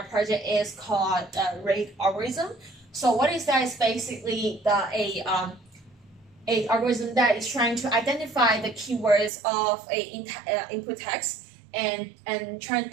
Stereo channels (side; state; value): left; drops out; at 9.3 s